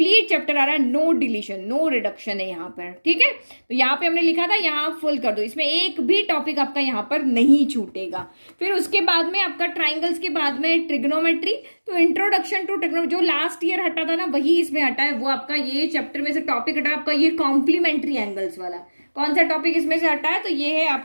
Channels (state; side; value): inverted; both; correlation -1.00